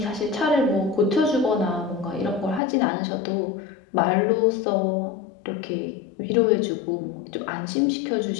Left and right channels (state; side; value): drops out; right; at 2.6 s